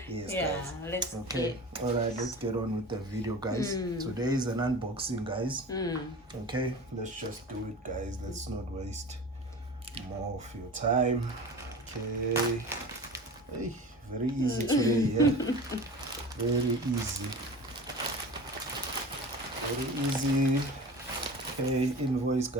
Yes, guys. Let's all right, let's get on with the video, guys. Today is an unboxing, guys. Okay, let's just do it, guys. Let's not waste more of your time. Okay. Hey, very easy today, yeah. Very easy. Okay, invoice,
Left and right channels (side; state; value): both; normal; correlation 0.35